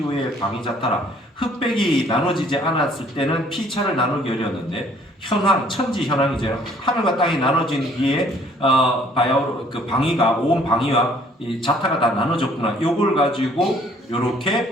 방위자타라. 흑백이 나눠지지 않았을 때는 피차를 나누기 어려웠는데 현황 천지 현황이죠. 하늘과 땅이 나눠진 뒤에 바야흐로 그 방위가 온 방위와 이 자타가 다 나눠졌구나. 요걸 가지고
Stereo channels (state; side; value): normal; both; correlation 0.60